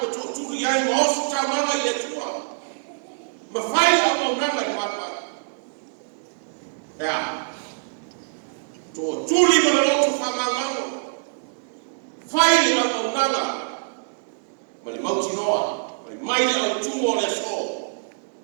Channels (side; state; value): left; silent; digital silence